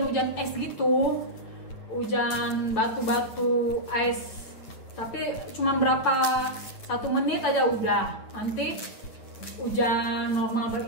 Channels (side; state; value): right; late; 9.3 ms